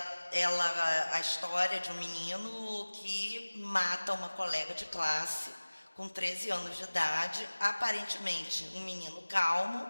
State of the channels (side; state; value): both; inverted; correlation -1.00